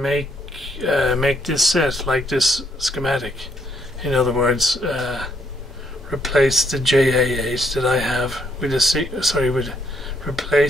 this set like this schematic. In other words, replace the JA8 that I have with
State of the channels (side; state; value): both; normal; correlation 0.72